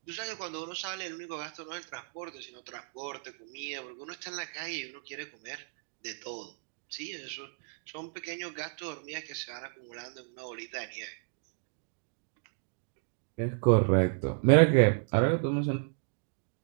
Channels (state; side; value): silent; left; digital silence